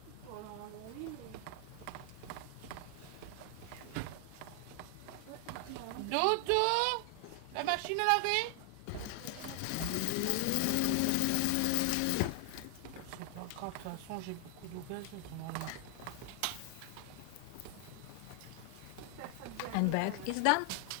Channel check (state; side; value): different; both; correlation 0.00